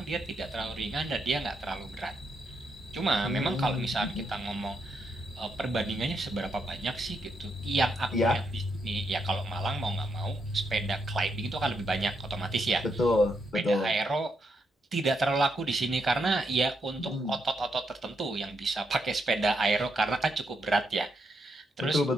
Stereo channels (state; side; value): normal; both; correlation 0.80